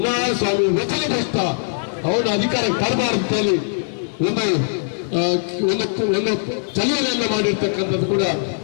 ವಚನ ಭ್ರಷ್ಟ, ಅವನ ಅಧಿಕಾರಕ್ಕೆ ತರಬಾರದು ಅಂತೇಳಿ ಒಂದು ಚಲನೆಯನ್ನ ಮಾಡಿರ್ತಕ್ಕಂಥದ್ದು ಕೂಡ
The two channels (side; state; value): right; silent; digital silence